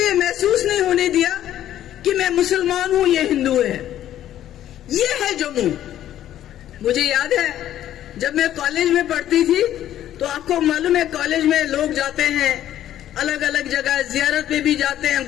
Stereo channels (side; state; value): right; quieter; 12.0 dB